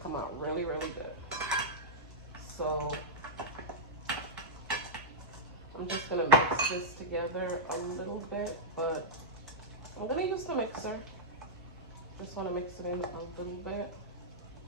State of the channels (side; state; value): both; normal; correlation -0.09